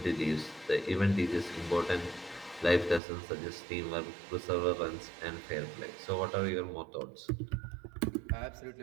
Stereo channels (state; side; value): drops out; left; at 3.0 s